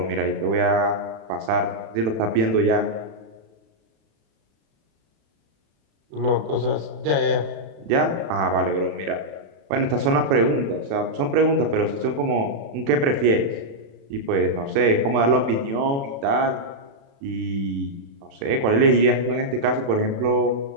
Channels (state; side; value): late; left; 36 ms